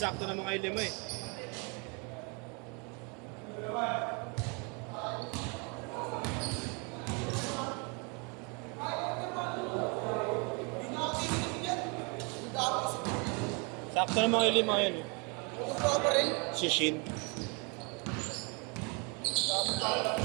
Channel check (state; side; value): quieter; left; 33.2 dB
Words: na mga ilima eh. Sakto na mga ilima yan eh. Si Shin.